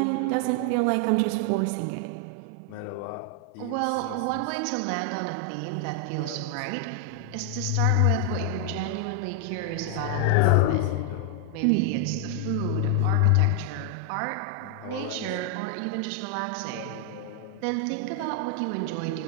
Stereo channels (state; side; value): different; both; correlation 0.00